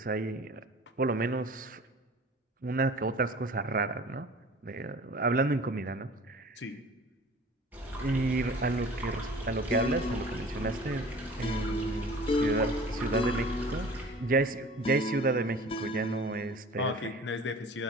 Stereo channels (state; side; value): normal; both; correlation 0.44